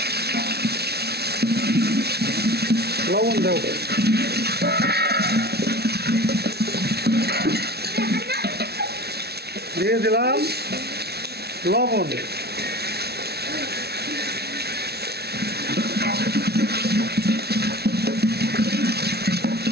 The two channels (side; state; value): left; late; 0.47 ms